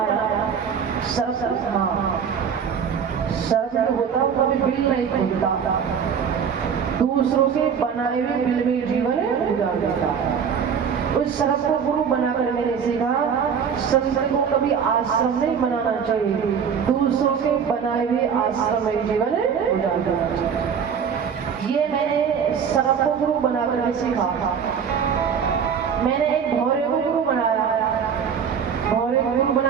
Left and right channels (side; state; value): left; quieter; 7.1 dB